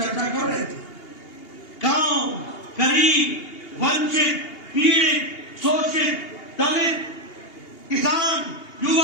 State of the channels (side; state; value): right; late; 2.8 ms